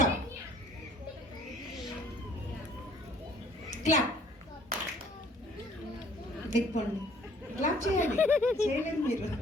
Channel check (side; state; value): both; normal; correlation 0.57